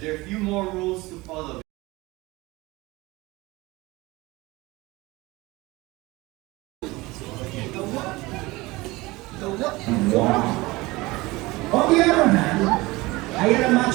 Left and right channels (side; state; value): left; quieter; 21.4 dB